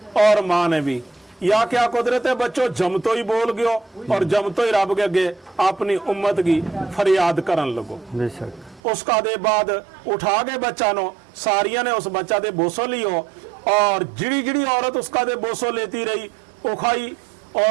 और माँ ने भी। या क्या कुदरत है बच्चों, जमतो ही बोल गयो और जमतो ही रब के अगे अपनी उम्मत की फरियाद करन लगो। बेशक। उसका दे बाद उठा के बच्चा नो सारिया ने उस बच्चा दे बोसो लियो और जिड़ी जिड़ी औरत उसका दे बोसो लेती रही उखाई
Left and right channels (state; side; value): drops out; left; at 8.8 s